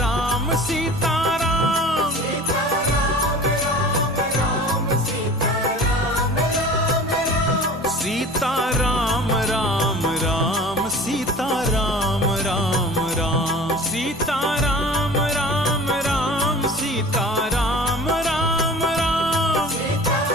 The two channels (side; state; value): both; normal; correlation 0.41